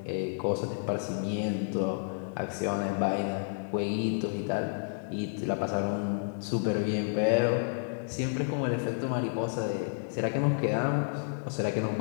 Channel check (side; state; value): right; silent; digital silence